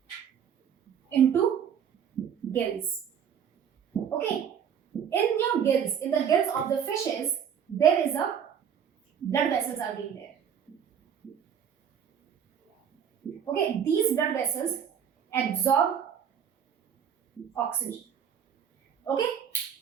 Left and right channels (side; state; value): left; quieter; 8.2 dB